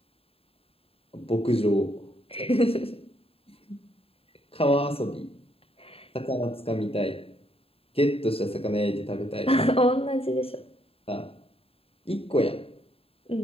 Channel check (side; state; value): right; late; 0.27 ms